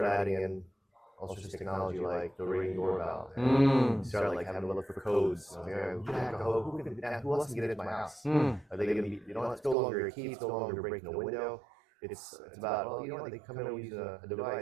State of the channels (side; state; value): left; drops out; at 9.8 s